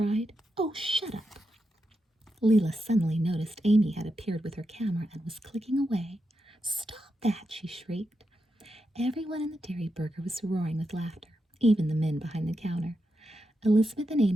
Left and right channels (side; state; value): both; normal; correlation 0.86